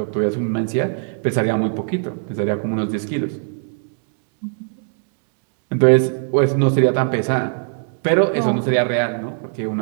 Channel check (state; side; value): silent; left; 58 dB below the other